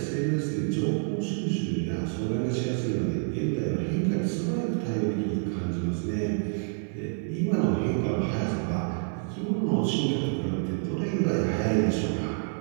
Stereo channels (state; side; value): silent; left; 59 dB below the other